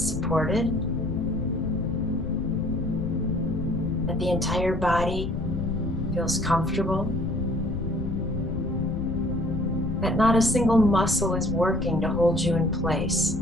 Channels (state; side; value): noise; left; rumble, 5 dB below the sound